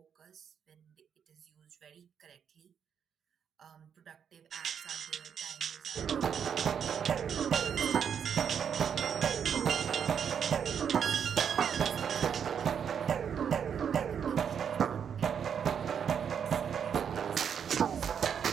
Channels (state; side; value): quieter; left; 7.8 dB